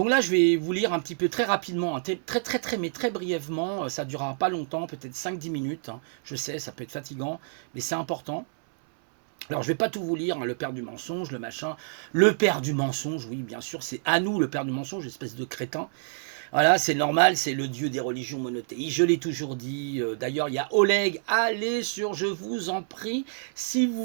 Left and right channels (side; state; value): left; silent; 60 dB below the other